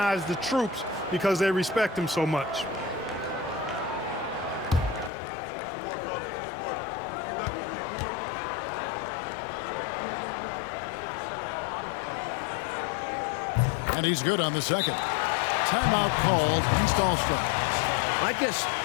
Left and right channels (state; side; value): drops out; right; at 5.1 s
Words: the troops because they respect him so much. And he's good on the second. Timeout called, East All-Stars. I guess